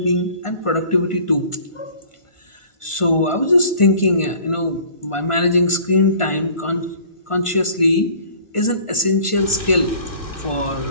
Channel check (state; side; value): late; right; 1.5 ms